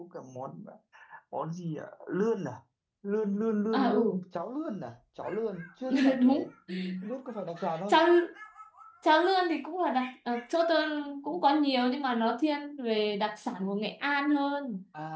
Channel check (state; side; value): identical; both; correlation 1.00